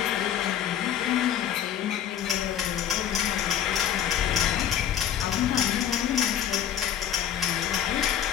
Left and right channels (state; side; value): quieter; right; 9.8 dB